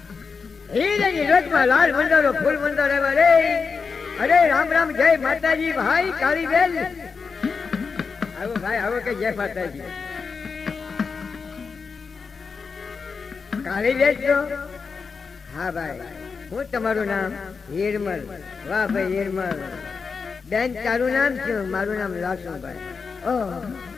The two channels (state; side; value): quieter; right; 5.2 dB